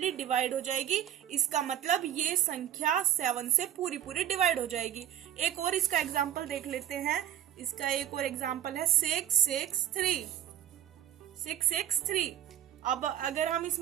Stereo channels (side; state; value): left; quieter; 10.9 dB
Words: डिवाइड हो जाएगी। इसका मतलब ये संख्या 7 से पूरी पूरी डिवाइड हो जाएगी। एक और इसका एग्जांपल देख लेते हैं। इसका एक और एग्जांपल है 663। अब अगर हम